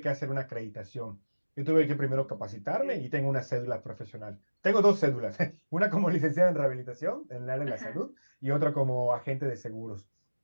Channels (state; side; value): inverted; both; correlation -1.00